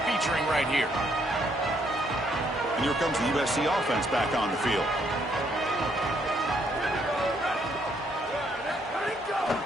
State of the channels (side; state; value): both; normal; correlation 0.71